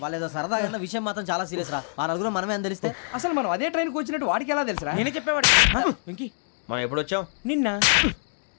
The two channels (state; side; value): silent; right; 62 dB below the other